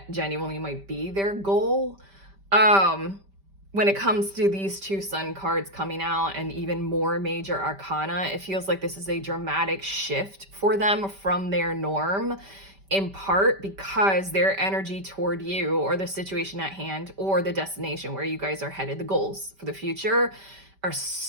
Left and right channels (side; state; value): left; late; 5.1 ms